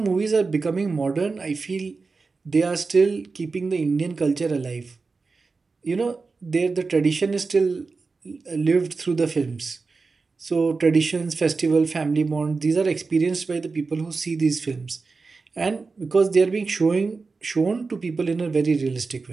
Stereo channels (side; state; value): left; quieter; 4.2 dB